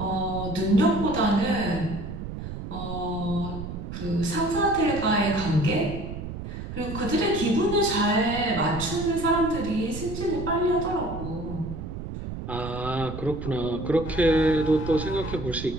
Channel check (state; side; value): noise; right; rumble, 8 dB below the sound